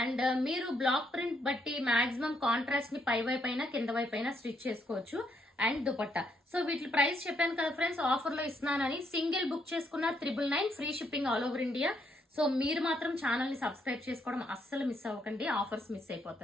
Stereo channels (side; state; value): both; normal; correlation 0.74